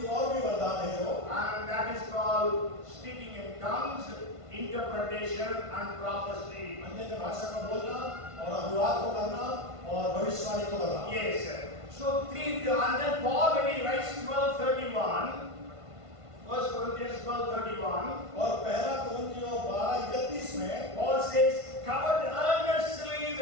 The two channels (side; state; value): left; late; 1.5 ms